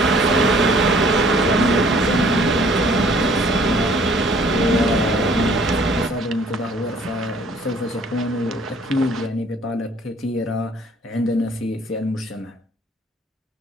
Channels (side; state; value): both; normal; correlation 0.57